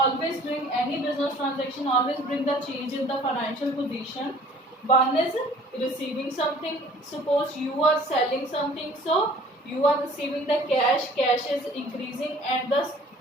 bring, any business transaction always bring the change in the financial position. One is receiving something. Suppose you are selling something, so you are receiving the cash. Cash is increasing and the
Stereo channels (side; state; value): both; normal; correlation 0.52